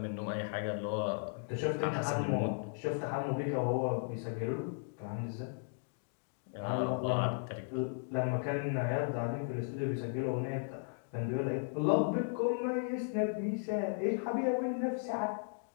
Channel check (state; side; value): silent; right; digital silence